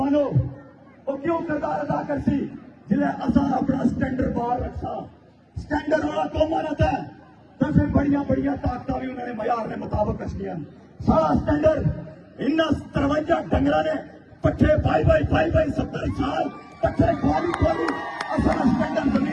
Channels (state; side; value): identical; both; correlation 1.00